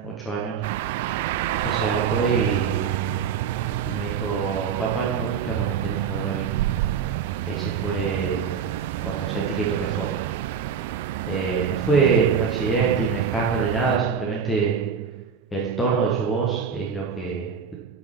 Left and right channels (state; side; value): quieter; left; 6.5 dB